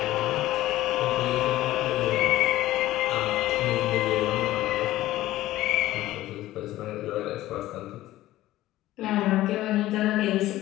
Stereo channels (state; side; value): quieter; right; 15.6 dB